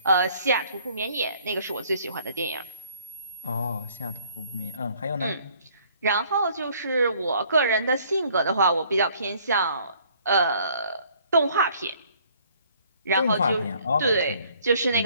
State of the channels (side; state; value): both; inverted; correlation -0.60